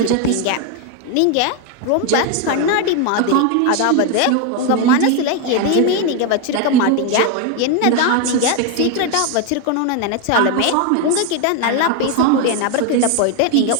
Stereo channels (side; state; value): both; different; correlation 0.01